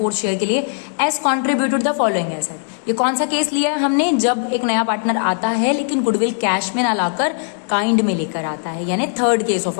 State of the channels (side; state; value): right; silent; digital silence